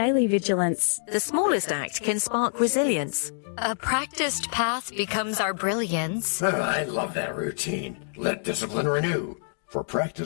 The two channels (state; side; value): silent; right; digital silence